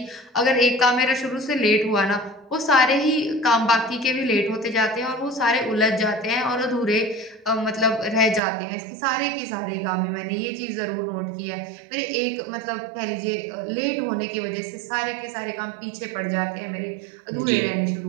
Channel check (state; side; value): drops out; left; at 8.4 s